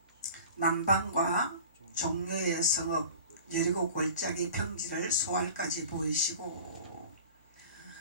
남방과 종려의 성읍 여리고 골짜기 평지를 소알까지 보이시고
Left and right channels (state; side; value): inverted; both; correlation -0.41